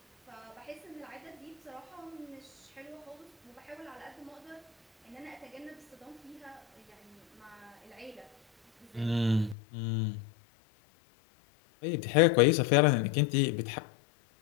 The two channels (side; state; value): right; drops out; at 9.6 s